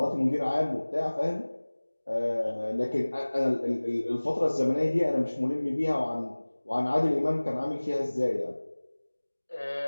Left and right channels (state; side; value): inverted; both; correlation -1.00